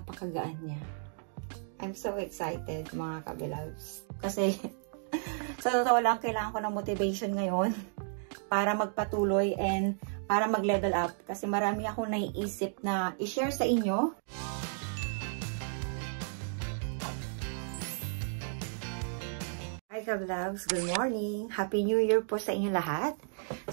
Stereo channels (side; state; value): left; silent; digital silence